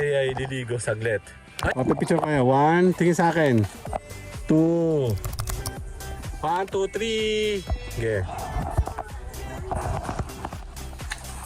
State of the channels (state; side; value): identical; both; correlation 1.00